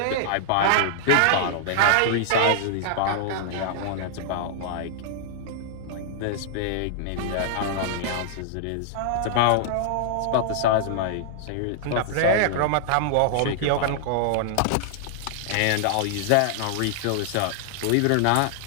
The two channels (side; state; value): both; different; correlation -0.01